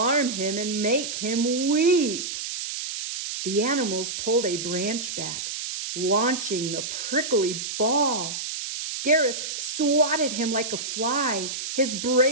him and make him weep." The animals pulled a branch back, launching the prickly ball. Gareth swatted him like a fly. His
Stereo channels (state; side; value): noise; right; hiss, 5 dB below the sound